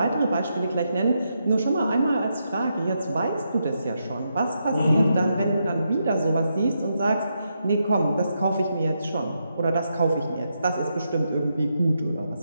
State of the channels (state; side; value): inverted; both; correlation -0.82